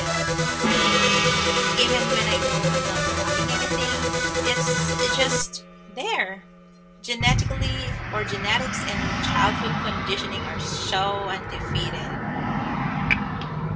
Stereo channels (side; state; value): both; identical; correlation 1.00